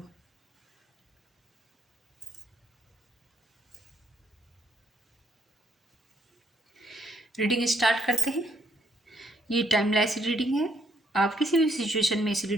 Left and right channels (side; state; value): both; normal; correlation 0.71